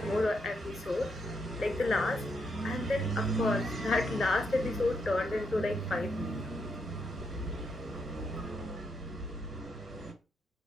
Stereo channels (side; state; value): both; normal; correlation 0.79